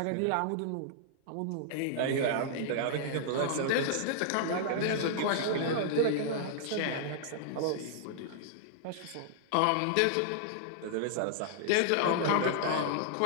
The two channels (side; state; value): both; different; correlation -0.01